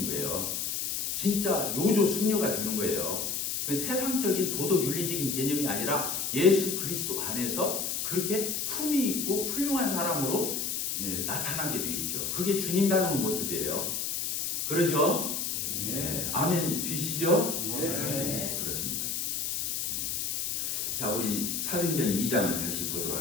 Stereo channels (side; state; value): left; noise; hiss, 1 dB below the sound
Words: 거예요. 진짜 요조 숙녀가 되는 거예요. 그 세상적인 도덕 윤리적인 개념이 아니라 예수 그리스도 안에서 그렇게 품위 있고 훌륭한 사람으로 나타나게 되어 있죠. 그게 주님 닮은 모습이에요. 그러죠? 네. 아멘 되시죠? 네, 그렇습니다. 자, 우리 사도행전 2장을 다시 보도록